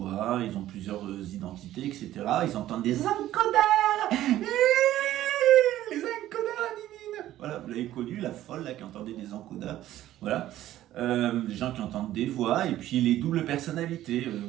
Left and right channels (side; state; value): left; quieter; 13.7 dB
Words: ils ont plusieurs identités, etc. Ils entendent des encodeurs. Les encodeurs, Nini. Voilà, vous l'avez connu, la folle là qui entendait des encodeurs. Voilà, les gens qui entendent des voix, et puis les doubles personnalités,